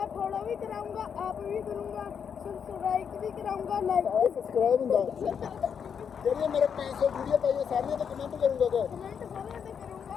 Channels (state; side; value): quieter; right; 7.2 dB